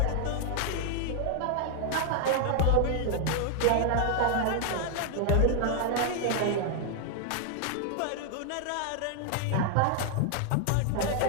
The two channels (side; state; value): both; different; correlation 0.00